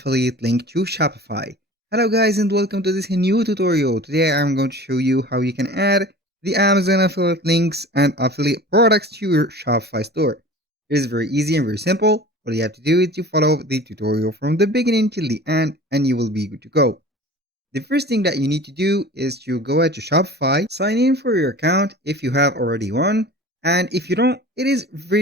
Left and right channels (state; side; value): normal; both; correlation 0.40